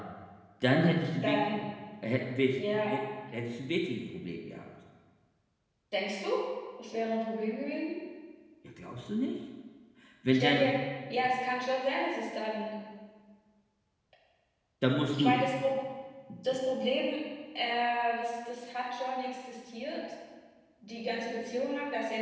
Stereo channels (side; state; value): both; identical; correlation 1.00